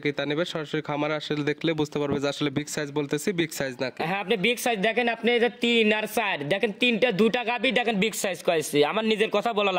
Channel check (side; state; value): both; identical; correlation 1.00